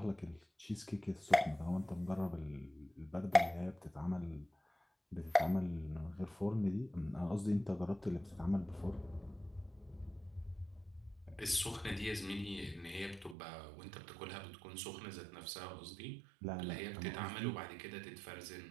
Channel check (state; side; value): drops out; left; at 13.4 s